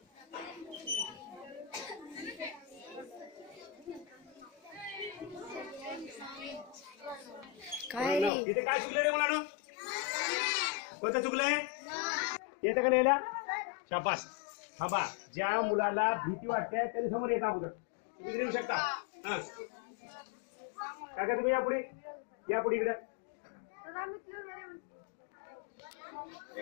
काय इथे काय चुकलं रे मुलांनो? कोणतं चुकलंय? येतं का लिहायला? शाबास. थांबा. ज्या मुलाला भीती वाटते त्यांनी समोर येत अगोदर. तुम्ही येऊ शकता. हा काय तुम्ही या पुढे इकडे.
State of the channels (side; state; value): right; drops out; at 8.3 s